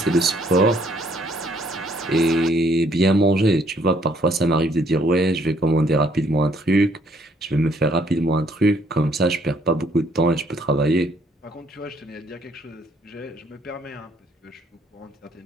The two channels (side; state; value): both; normal; correlation 0.66